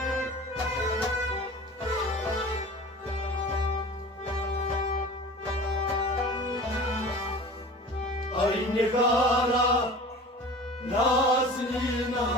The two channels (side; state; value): both; normal; correlation 0.38